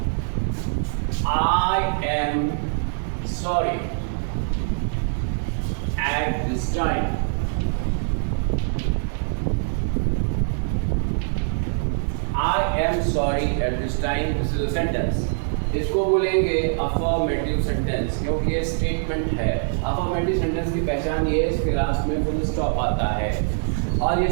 I am sorry at this time. I am sorry at this time. This is a sentence. इसको बोलेंगे अफर्मेटिव सेंटेंस क्योंकि ये स्टेटमेंट है. अफर्मेटिव सेंटेंस की पहचान ये है इसके लास्ट में फुल स्टॉप आता है और ये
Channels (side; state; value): left; silent; digital silence